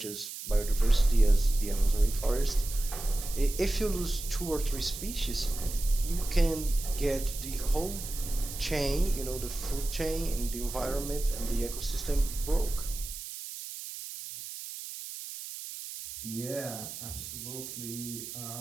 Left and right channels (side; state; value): right; noise; hiss, 9 dB below the sound